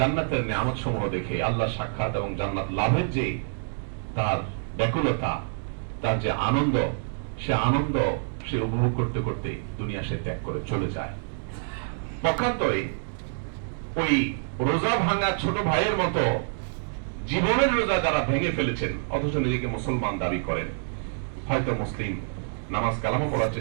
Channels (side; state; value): left; silent; digital silence